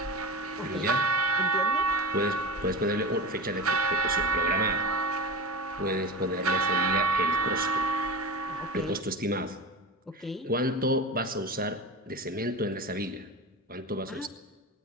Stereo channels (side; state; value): both; normal; correlation 0.25